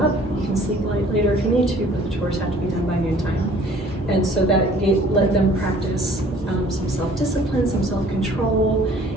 You can sleep later if you need to, but the chores have to be done by noon time. And so that let them practice some self-discipline, some self-control,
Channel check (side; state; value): both; normal; correlation 0.54